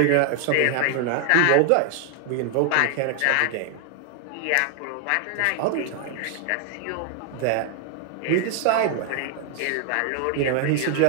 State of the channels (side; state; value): both; different; correlation 0.00